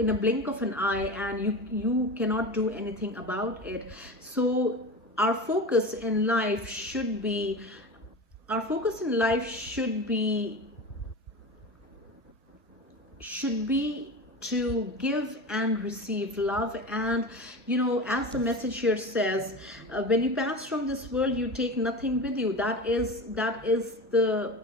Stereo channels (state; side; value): normal; both; correlation 0.29